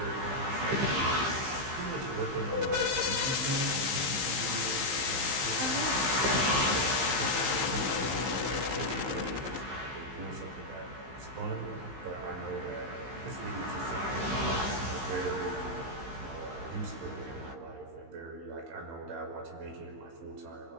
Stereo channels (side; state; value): left; late; 15 ms